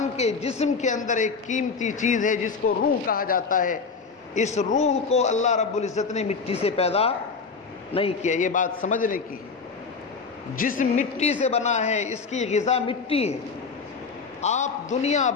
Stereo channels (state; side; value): quieter; right; 4.9 dB